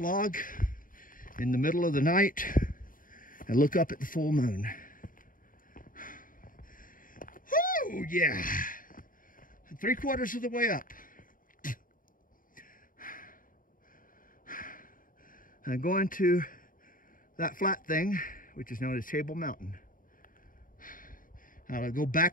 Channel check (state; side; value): late; right; 0.40 ms